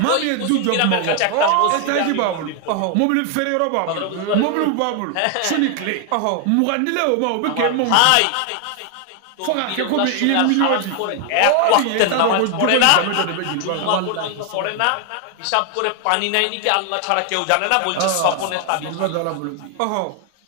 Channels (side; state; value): both; different; correlation 0.00